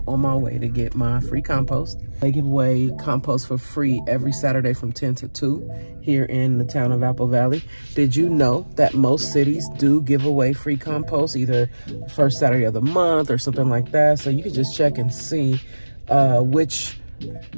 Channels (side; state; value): both; inverted; correlation -1.00